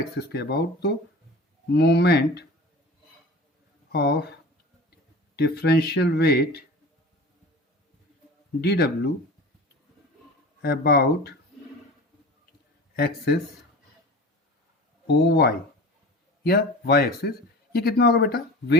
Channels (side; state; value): both; normal; correlation 0.36